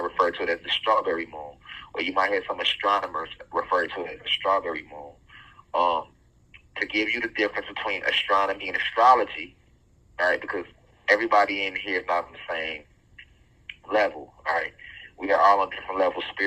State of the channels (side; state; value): both; identical; correlation 1.00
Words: refer to it as the strawberry moon, or you might hear some astronomers refer to it as the strawberry moon. To give you the difference between astronomy and astrology, all right, because everybody in here is not on the same level, all right? We are all on different levels